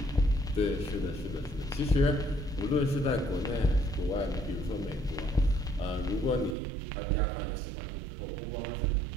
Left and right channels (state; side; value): drops out; left; at 6.6 s